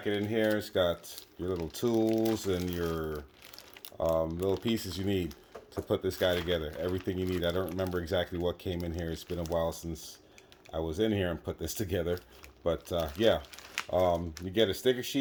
in here, it's got your little tools and your little pieces you need to put this guy together. Everything you need. I don't remember exactly what came in here. It's been a while since I was in here and put this together. But yeah, you get a sticker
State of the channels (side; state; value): both; identical; correlation 1.00